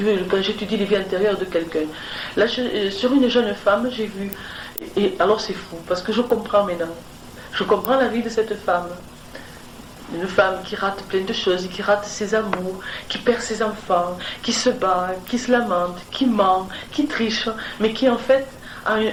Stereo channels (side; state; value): both; identical; correlation 1.00